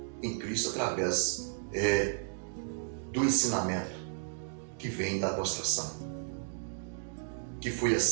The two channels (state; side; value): silent; left; digital silence